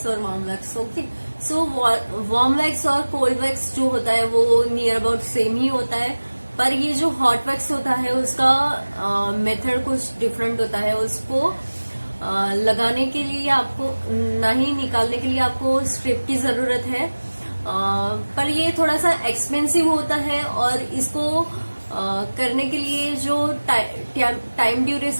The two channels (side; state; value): both; inverted; correlation -1.00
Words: और warm wax. Okay, so warm wax और cold wax जो होता है वो नियर अबाउट सेम ही होता है, पर ये जो hot wax होता है उसका मेथड कुछ डिफरेंट होता है। उसको लगाने के लिए आपको ना ही निकालने के लिए आपको स्ट्रिप की जरूरत है, पर ये थोड़ा सा एक्सपेंसिव होता है। और इसको करने के लिए जो टाइम